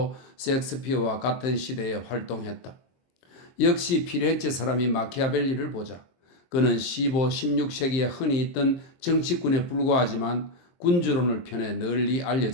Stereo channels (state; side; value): late; right; 23 ms